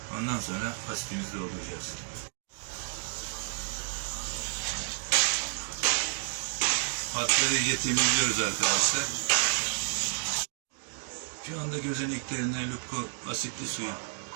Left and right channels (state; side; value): silent; left; 57 dB below the other